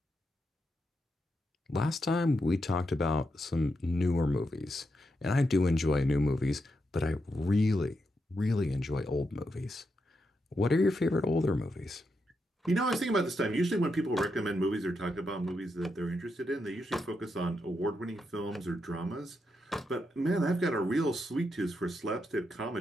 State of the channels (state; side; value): normal; both; correlation 0.83